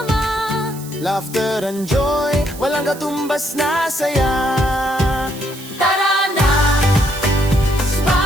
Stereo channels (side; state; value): right; noise; hiss, 16 dB below the sound